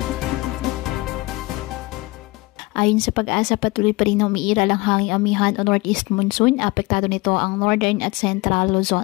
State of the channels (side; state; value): right; quieter; 22.9 dB